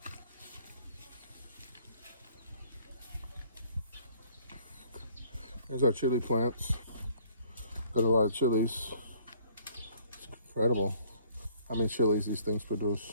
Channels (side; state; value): both; inverted; correlation -0.58